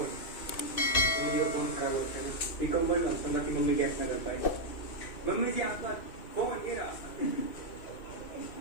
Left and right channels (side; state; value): right; late; 2.6 ms